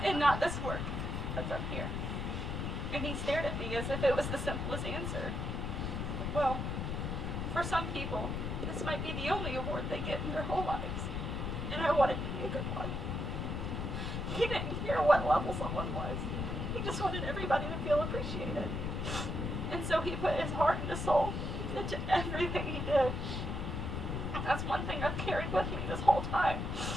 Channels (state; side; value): noise; left; rumble, 2 dB below the sound